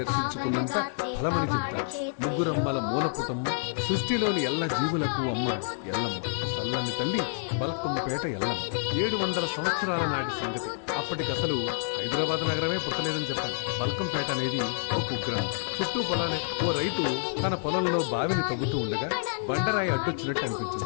దర్శించుకున్నంత ఫలమని చెప్తారు. ముగ్గురమ్మల మూలపుటమ్మ, సృష్టిలోని ఎల్ల జీవులకు అమ్మ ఎల్లమ్మ, చల్లని తల్లి బల్కంపేట ఎల్లమ్మ. 700 సంవత్సరాల నాటి సంగతి. అప్పటికసలు హైదరాబాద్ నగరమే పుట్టలేదని చెప్పాలి. బల్కంపేట అనేది ఓ కుగ్రామం. చుట్టూ పొలాలే. ఓ రైతు తన పొలంలో బావిని తవ్వుతూ ఉండగా బండరాయి అడ్డొచ్చినట్టు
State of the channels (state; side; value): silent; right; digital silence